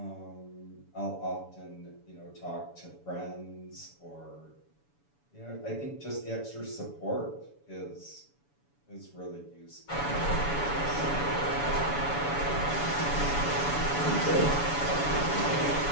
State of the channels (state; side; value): late; right; 7.0 ms